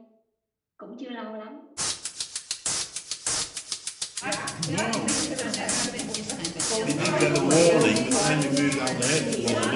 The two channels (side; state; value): both; identical; correlation 1.00